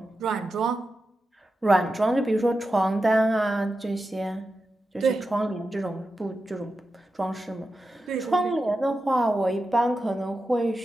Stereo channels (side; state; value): both; normal; correlation 0.91